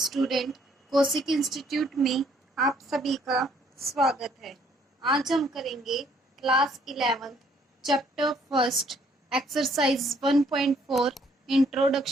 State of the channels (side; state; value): both; normal; correlation 0.65